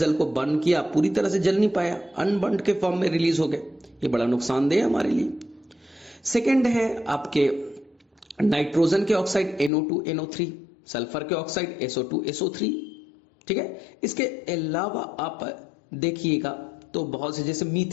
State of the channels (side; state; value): right; drops out; at 9.7 s